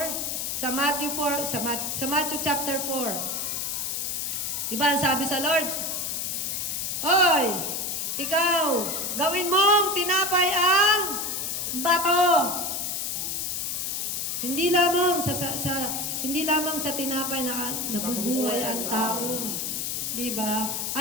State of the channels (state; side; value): noise; left; hiss, 2 dB below the sound